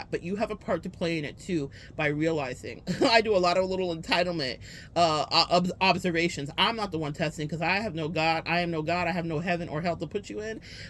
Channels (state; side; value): identical; both; correlation 1.00